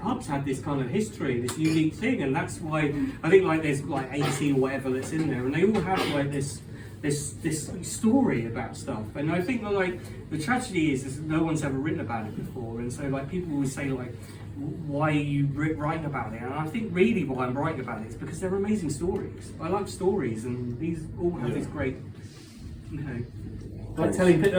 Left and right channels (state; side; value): identical; both; correlation 1.00